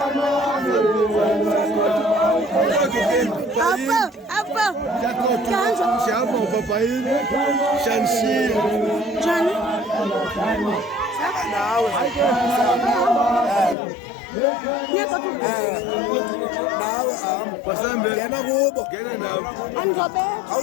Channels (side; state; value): right; drops out; at 13.8 s